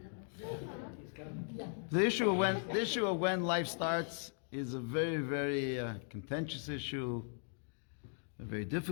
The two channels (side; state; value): right; silent; 52 dB below the other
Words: The issue of when life starts is a very, very contentious issue, a very